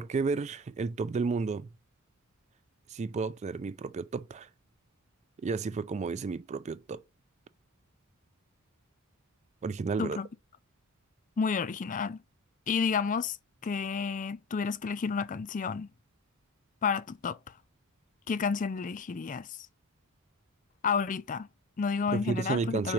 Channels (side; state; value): both; normal; correlation 0.35